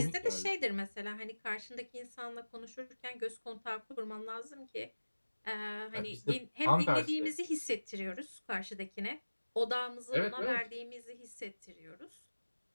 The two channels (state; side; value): inverted; both; correlation -1.00